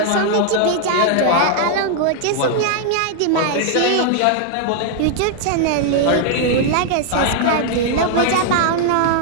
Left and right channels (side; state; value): both; different; correlation 0.00